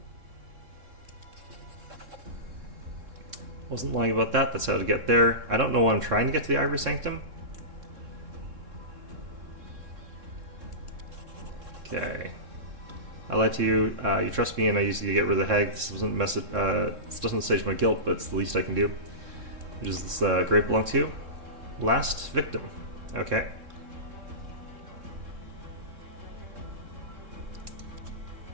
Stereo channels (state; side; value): late; left; 3.7 ms